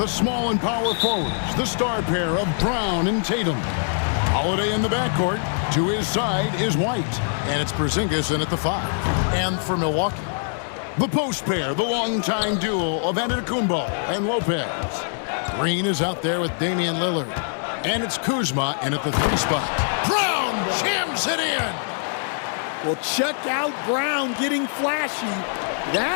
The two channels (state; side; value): silent; right; digital silence